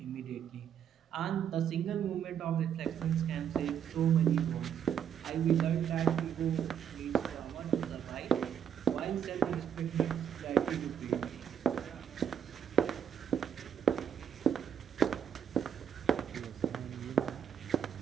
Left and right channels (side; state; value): left; quieter; 8.5 dB